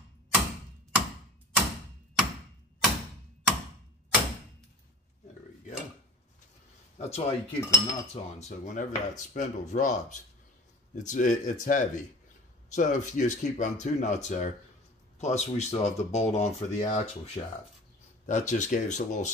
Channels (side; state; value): both; normal; correlation 0.41